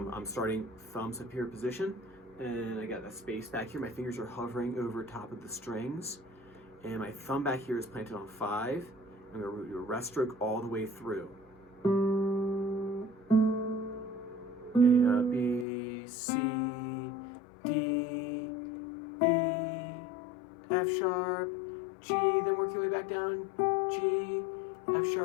I'm starting thumbs up here position, and I got that space back here. My fingers are hovering over top of the strings, and my thumb back here is planted on 5. I'm going to do a rest stroke all the way through. A, B, C, D, E, F sharp, G, then work your way back down, G, F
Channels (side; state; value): right; drops out; at 15.7 s